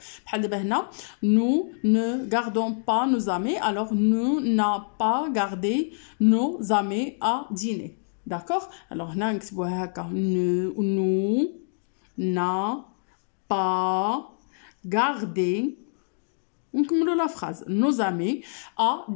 بحال دابا هنا nous ne gardons pas nos amis. Alors nous n'a pas gardé nos amis à dîner. D'accord? Alors هنا نكتبوها هكا nous n'a pas gardé. On commence la phrase. Nos amis à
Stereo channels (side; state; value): right; silent; digital silence